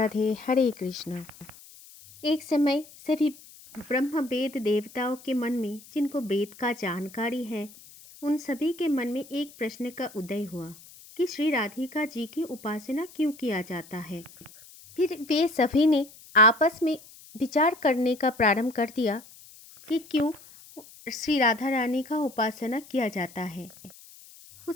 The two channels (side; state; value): left; noise; hiss, 21 dB below the sound